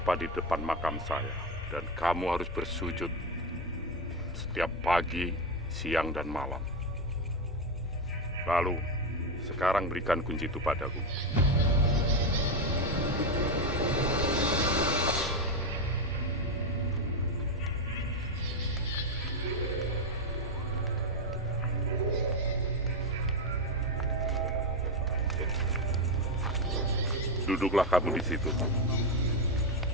di depan makam saya. Dan kamu harus bersujud setiap pagi, siang, dan malam. Lalu, sekarang berikan kunci itu padaku. Duduklah kamu di situ.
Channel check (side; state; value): both; normal; correlation 0.10